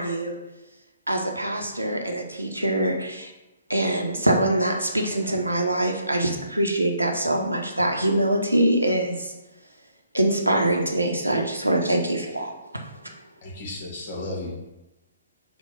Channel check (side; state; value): both; inverted; correlation -0.72